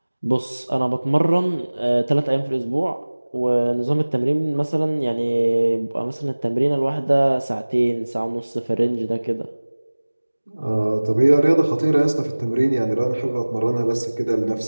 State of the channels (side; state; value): both; inverted; correlation -1.00